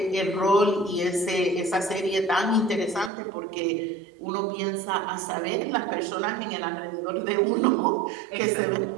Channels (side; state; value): left; drops out; at 3.1 s